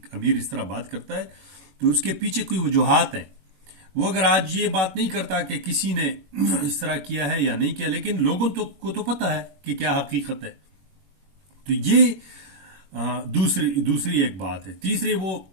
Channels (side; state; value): left; late; 21 ms